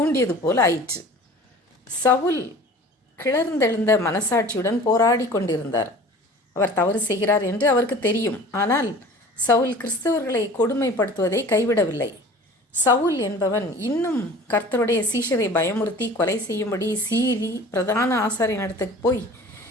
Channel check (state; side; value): normal; both; correlation 0.43